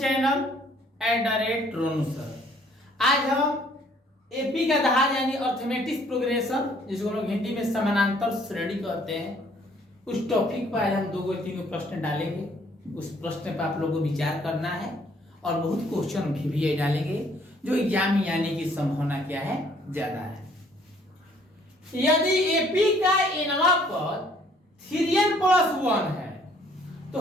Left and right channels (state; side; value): normal; both; correlation 0.62